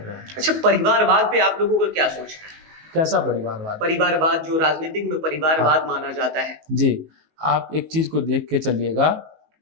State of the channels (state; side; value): late; left; 19 ms